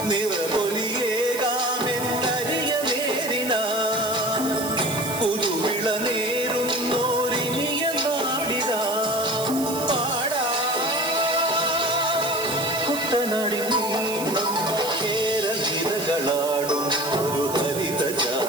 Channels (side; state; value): right; noise; hiss, 8 dB below the sound